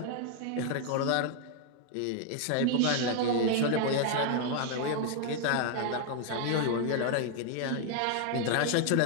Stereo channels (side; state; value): both; different; correlation 0.00